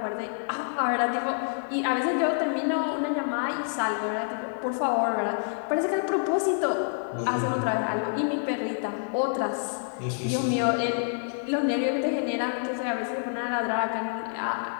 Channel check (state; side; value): silent; right; digital silence